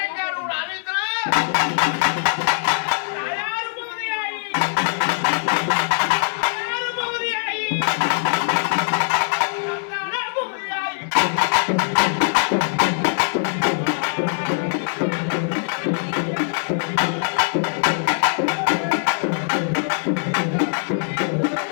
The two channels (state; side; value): silent; right; digital silence